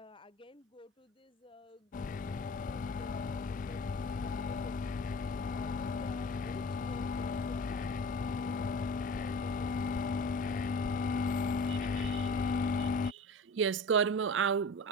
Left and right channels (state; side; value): normal; both; correlation 0.38